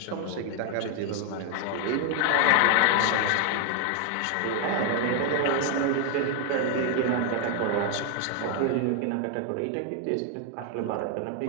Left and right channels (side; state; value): both; different; correlation 0.00